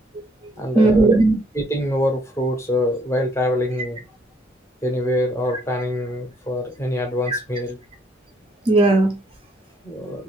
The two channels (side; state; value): both; normal; correlation 0.67